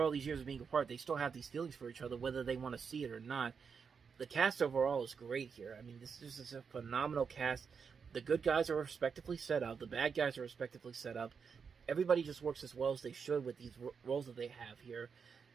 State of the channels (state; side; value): quieter; left; 6.0 dB